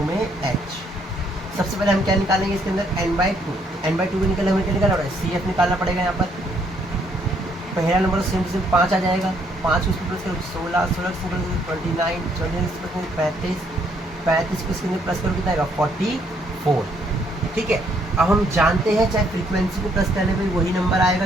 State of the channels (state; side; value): normal; both; correlation 0.69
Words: में h। सबसे पहले हम क्या निकालेंगे इसके अंदर n/2 को निकलने हमें क्या निकालना पड़ेगा सी एफ निकालना पड़ेगा। यहाँ पर पहला नंबर तो सेम 5 आ जाएगा, 5 को इसमें प्लस करो 16, 16 से प्लस 29, 29 से प्लस 35, 35 को इसके अंदर प्लस करो कितना आएगा 44। ठीक है। अब हम जानते हैं चाहे फ्रीक्वेंसी को प्लस करने पे वही नंबर